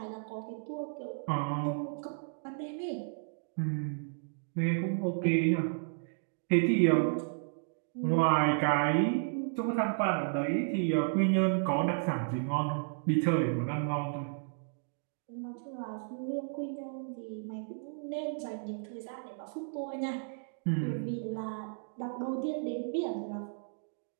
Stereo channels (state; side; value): silent; left; digital silence